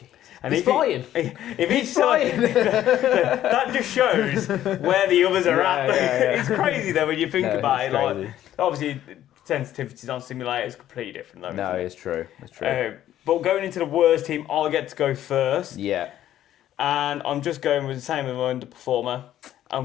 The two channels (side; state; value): right; quieter; 12.2 dB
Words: And he's flying. If he's flying, that just shows where the others are at. Yeah. It's crazy though when you think about it. Crazy. Like, obviously, sensitivities on simulators is completely different though. No, it's true. It's true. But going into the worst team, I get to go first. Yeah. And I'm just going with the same as my underperformer. I'm